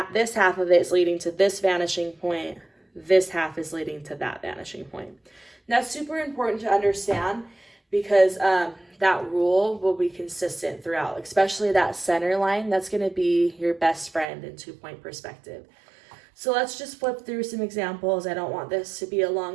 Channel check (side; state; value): left; drops out; at 14.2 s